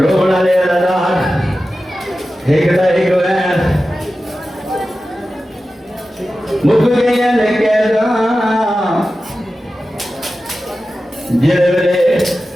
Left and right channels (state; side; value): normal; both; correlation 0.94